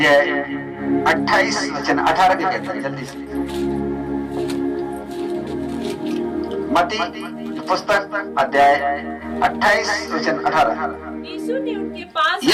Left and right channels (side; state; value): both; identical; correlation 1.00